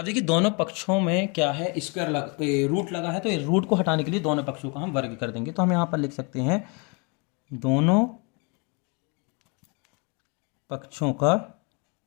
देखिए दोनों पक्षों में क्या है, स्क्वायर रूट लगा है, तो रूट को हटाने के लिए दोनों पक्षों का हम वर्ग कर देंगे। तो हम यहाँ पर लिख सकते हैं दोनों पक्षों का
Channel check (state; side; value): quieter; right; 32.5 dB